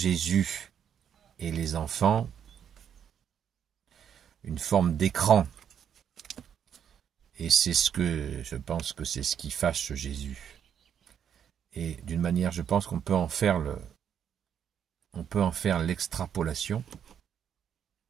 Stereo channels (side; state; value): left; quieter; 8.6 dB